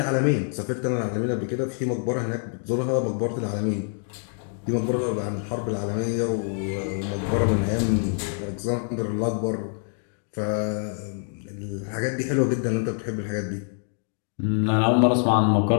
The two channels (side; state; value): right; silent; 61 dB below the other